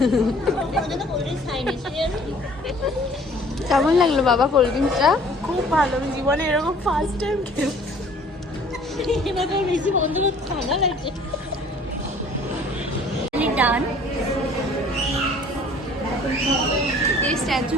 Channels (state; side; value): normal; both; correlation 0.53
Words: কেমন লাগলো বাবা কোল্ড ড্রিঙ্কসটা? খুব ভালো, আমি জীবনে এরকম ফার্স্ট টাইম খেলাম। এবার বেশি বন্ধ করতে ঠান্ডা লাগছে। ডান স্ট্যাচু